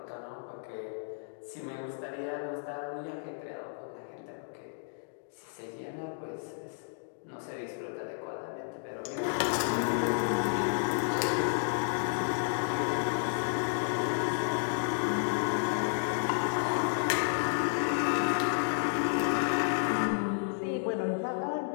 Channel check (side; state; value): right; silent; digital silence